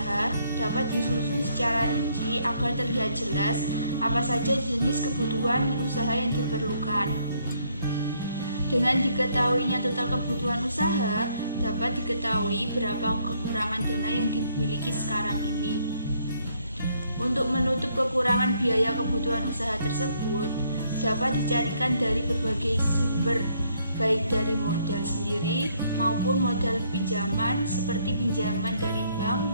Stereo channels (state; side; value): inverted; both; correlation -0.69